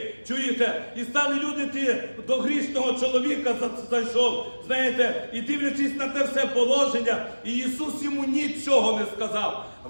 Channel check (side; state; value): both; inverted; correlation -1.00